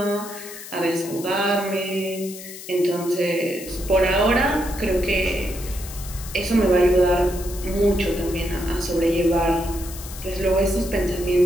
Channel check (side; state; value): left; noise; hiss, 13 dB below the sound